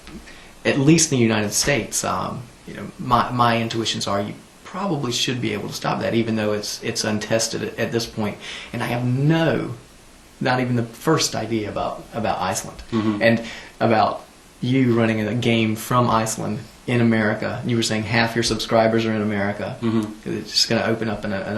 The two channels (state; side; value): identical; both; correlation 1.00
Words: at least in the United States, you know, my intuitions are you probably should be able to stop that, even though it's untested at this point. And I have not even the first idea about Iceland and about you running a game from Iceland in America. You were saying half your subscribers are in America. It's just going to open up an